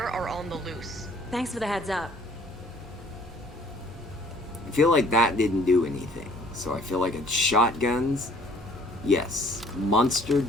are on the loose. Thanks for the heads up. I feel like that didn't do anything. So I feel like it's shotguns. Yes, Monster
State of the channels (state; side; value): normal; both; correlation 0.56